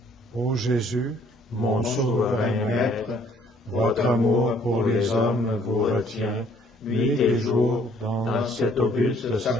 Ô Jésus, Mon souverain Maître, votre amour pour les hommes vous retient, nuit et jour, dans cet auguste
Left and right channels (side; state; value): both; normal; correlation 0.61